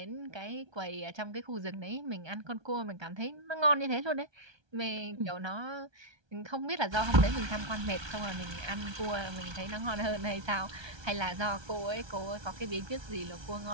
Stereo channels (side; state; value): left; late; 1.3 ms